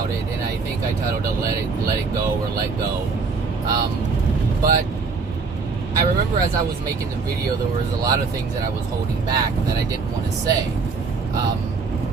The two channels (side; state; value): left; quieter; 4.6 dB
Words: it, and I think I titled it Let It Go or Let Go. But I remember as I was making the video, there was a lot of things that I was holding back that I didn't want to say,